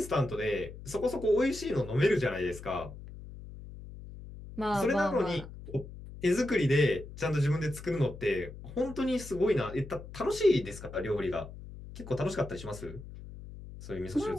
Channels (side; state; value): left; noise; hum, 14 dB below the sound